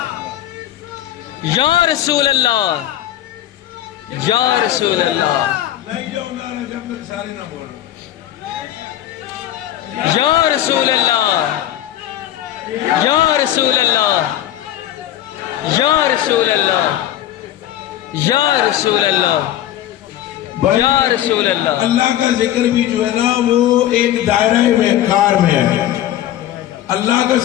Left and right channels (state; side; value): quieter; right; 12.5 dB